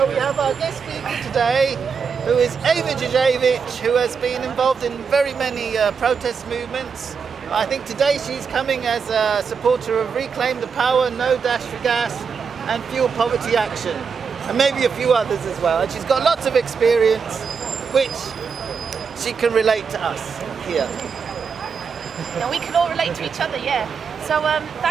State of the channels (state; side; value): quieter; left; 6.0 dB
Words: we have our guest speaker today, who is Ewa Jasiewicz, who has been involved in very many protest movements. I think today she's coming as a supporter of Reclaim the Power, No Dash for Gas, and Fuel Poverty Action, and maybe a few others as well. And she's got lots of experience, which she can relate to us here. And we can all relate to each other, yeah. So